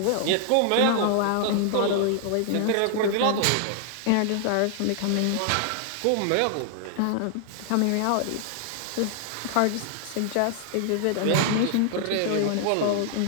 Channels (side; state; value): both; different; correlation 0.00